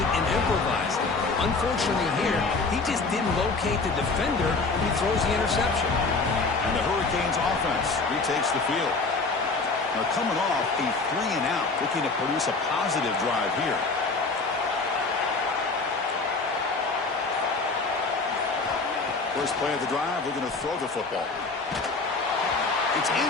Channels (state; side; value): quieter; right; 3.9 dB